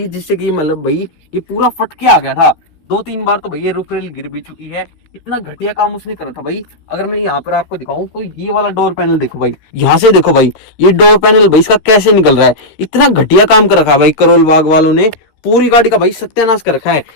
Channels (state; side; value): late; right; 13 ms